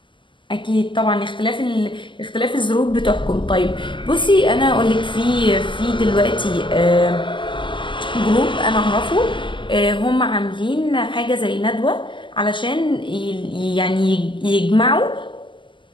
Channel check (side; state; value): right; late; 0.24 ms